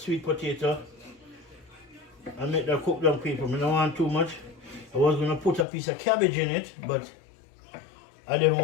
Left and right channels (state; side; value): drops out; right; at 5.7 s